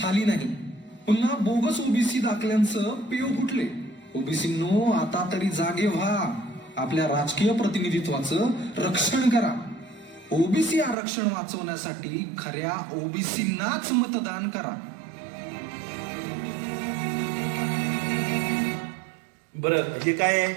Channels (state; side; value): drops out; left; at 11.0 s